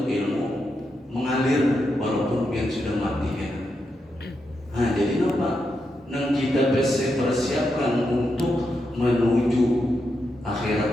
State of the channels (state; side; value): normal; both; correlation 0.85